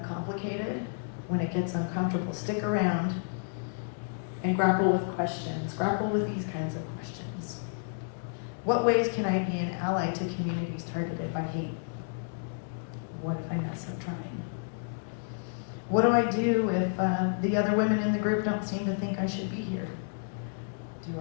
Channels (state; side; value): silent; right; digital silence